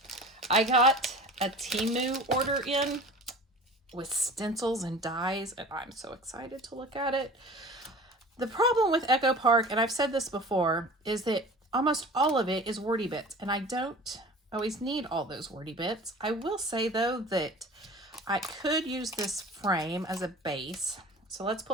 I got a Temu order in with stencils and dies, and I'm so excited to look at it. The problem with Echo Park, and I've said this before, is that almost all of it is wordy bits, and I don't always need all those wordy bits. I will say, though, that I could use this frame as a base. So let's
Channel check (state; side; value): normal; both; correlation 0.40